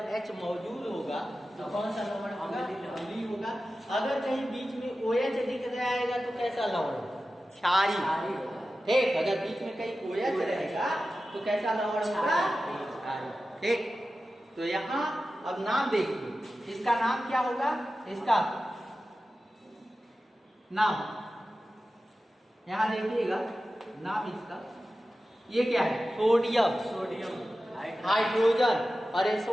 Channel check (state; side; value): normal; both; correlation 0.94